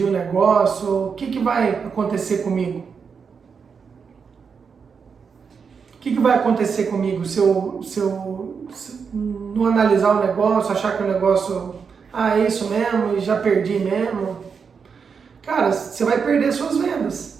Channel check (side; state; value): left; quieter; 6.0 dB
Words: o negócio, o que vai acontecer comigo? O que vai acontecer comigo se eu não analisar o negócio, achar que o negócio, é isso mesmo, e já perdi mesmo? Cara, você vai perder suas